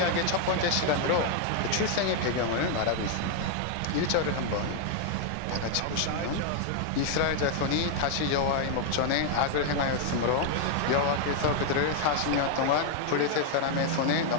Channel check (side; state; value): both; different; correlation 0.00